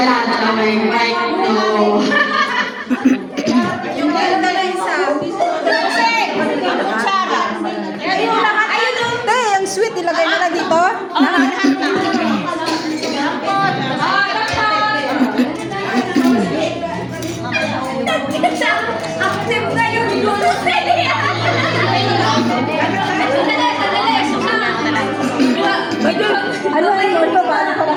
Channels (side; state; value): both; identical; correlation 1.00